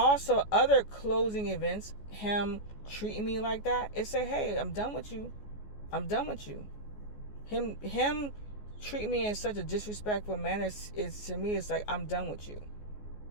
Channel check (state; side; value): late; right; 14 ms